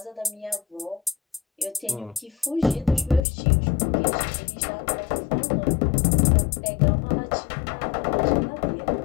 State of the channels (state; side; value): drops out; right; at 3.2 s